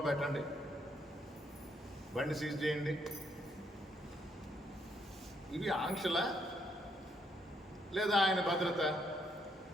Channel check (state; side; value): normal; both; correlation 0.74